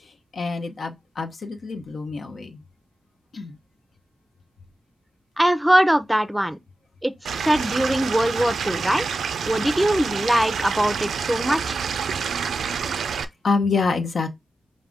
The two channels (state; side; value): normal; both; correlation 0.92